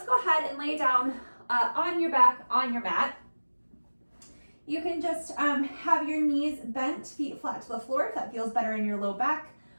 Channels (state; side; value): inverted; both; correlation -1.00